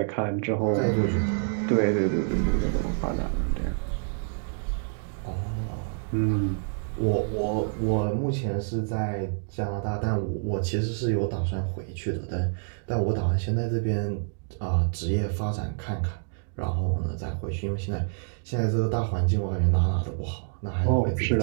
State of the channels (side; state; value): left; silent; digital silence